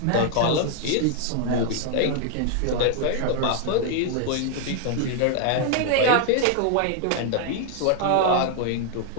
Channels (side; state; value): both; different; correlation 0.00